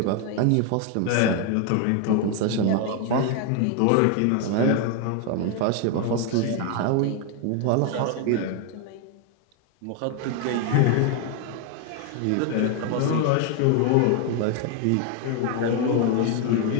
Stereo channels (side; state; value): both; different; correlation 0.01